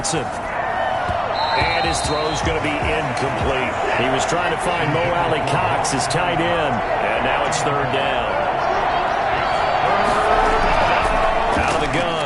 And his throw's going to be incomplete. He was trying to find Mo Alley-Cox, his tight end. And now it's 3rd down. Out of the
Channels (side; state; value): both; identical; correlation 1.00